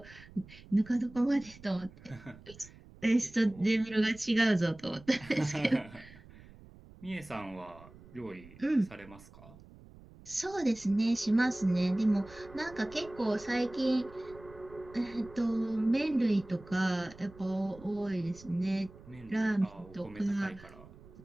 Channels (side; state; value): right; noise; rumble, 21 dB below the sound